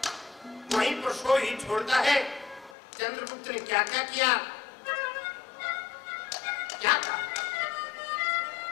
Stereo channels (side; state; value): right; drops out; at 2.8 s